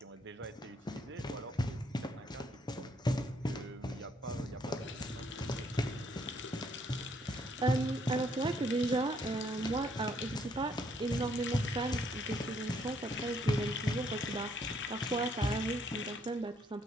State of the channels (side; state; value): both; normal; correlation 0.69